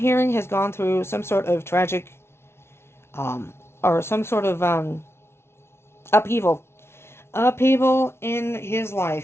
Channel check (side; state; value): right; late; 0.12 ms